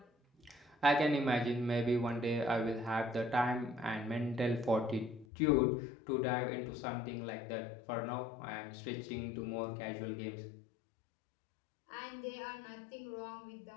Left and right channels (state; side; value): drops out; right; at 5.2 s